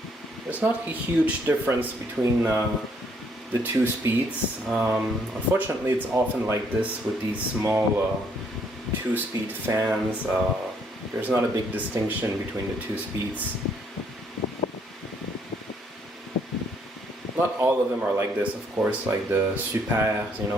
There's not a huge difference between the two speeds. Unfortunately, it's often like this with these small two-speed fans. There's not a big distinction between the two speeds. Not all of them are like this, of course, like the Super, you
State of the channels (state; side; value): normal; both; correlation 0.68